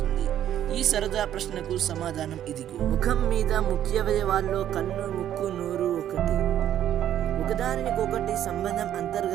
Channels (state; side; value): quieter; left; 11.1 dB